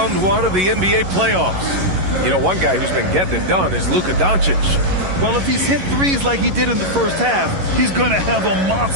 one of the NBA playoffs. You know, one guy who's been getting it done is Luka Doncic. Well, if he's hit threes like he did in the first half, he's going to have a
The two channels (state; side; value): late; left; 11 ms